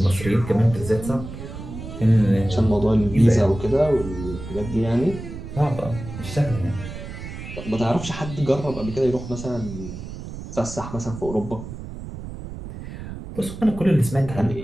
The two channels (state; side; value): noise; right; rumble, 10 dB below the sound